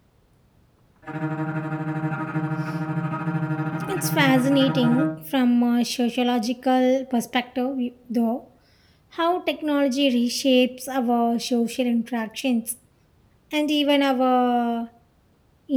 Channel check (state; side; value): identical; both; correlation 1.00